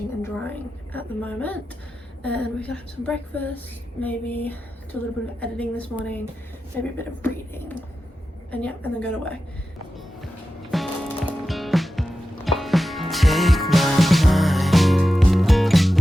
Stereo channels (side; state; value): both; normal; correlation 0.92